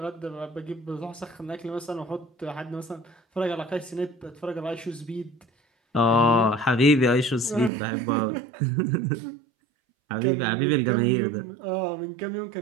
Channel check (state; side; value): drops out; left; at 7.7 s